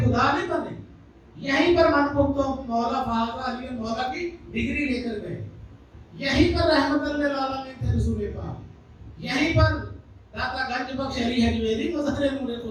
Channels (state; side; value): identical; both; correlation 1.00